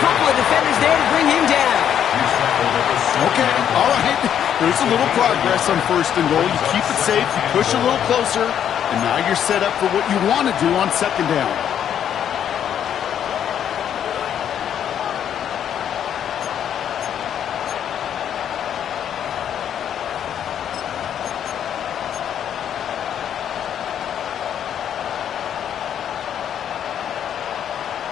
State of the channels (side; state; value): right; quieter; 9.4 dB